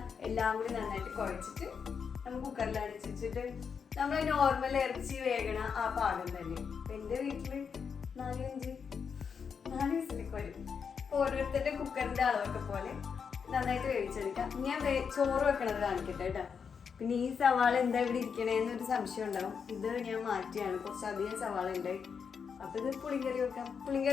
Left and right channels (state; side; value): quieter; right; 6.4 dB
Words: എല്ലാം കൂടി നന്നായിട്ട് കുഴച്ചിട്ട് നമുക്ക് കുക്കറിൽ അടിച്ചിട്ട് നമ്മൾ നോർമൽ ഇറച്ചി വേഗണ ആ പാകം തന്നെ. എൻ്റെ വീട്ടില് 4 വിസിലൊക്കെ വരും. ഓരോരുത്തരുടെ കുക്കറിന്റെ അളവൊക്കെ പോലെ നന്നായിട്ട് വേവിച്ചെടുക്കാം. ഞാൻ ചോറ് വെക്കണത് കാണിക്കട്ടെ കേട്ടോ. പിന്നെ ഈ സവാള എന്താ ഇവിടെ ഇരിക്കണേന്നൊരു സംശയം ഉണ്ടാവും. ഇത് ഞാൻ മാറ്റിയാണ്, കുറച്ചധികം സവാള ഉണ്ടായി. അപ്പൊ ഇത് പുളിങ്കറി വെക്കാം.